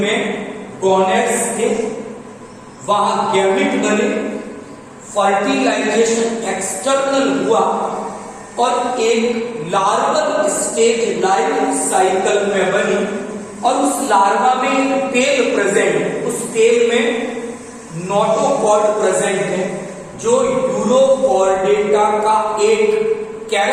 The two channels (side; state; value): both; identical; correlation 1.00